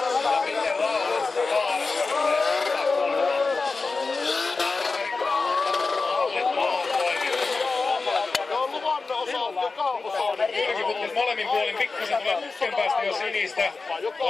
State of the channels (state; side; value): quieter; right; 4.0 dB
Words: Ja miten rauhallista kaaressa Jyrki putkut molemmin puolin pikkusen tulee putken päästä jo sinistä.